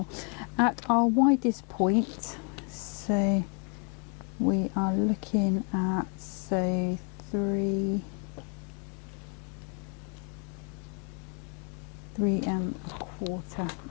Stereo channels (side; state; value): right; quieter; 39.7 dB